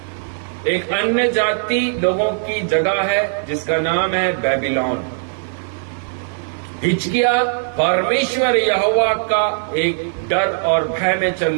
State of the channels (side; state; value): left; silent; digital silence